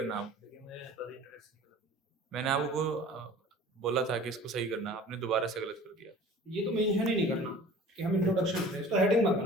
आप, मैंने आपको बोला था कि इसको सही करना, आपने दोबारा से गलत कर दिया। ये तो मेंशन ही नहीं करना कि हम इंट्रोडक्शन करें, इसको हेडिंग मत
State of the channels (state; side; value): normal; both; correlation 0.44